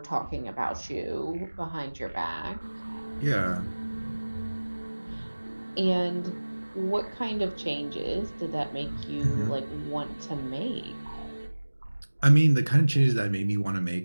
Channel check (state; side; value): inverted; both; correlation -1.00